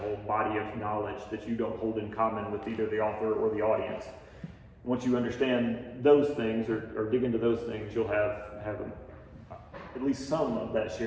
body of knowledge that you don't hold in common with either the author or the audience. Once you understand those things or dig into those things, you'll have at least some of that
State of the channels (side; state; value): both; identical; correlation 1.00